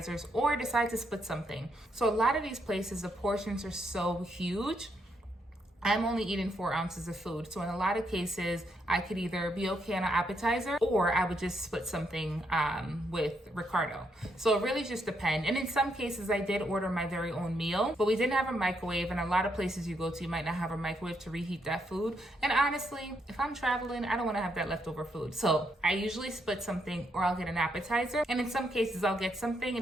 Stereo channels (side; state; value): both; normal; correlation 0.77